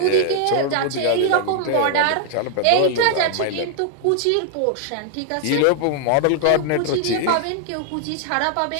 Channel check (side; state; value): both; different; correlation 0.00